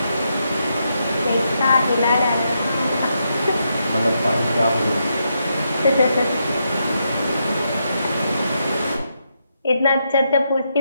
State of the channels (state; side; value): inverted; both; correlation -0.81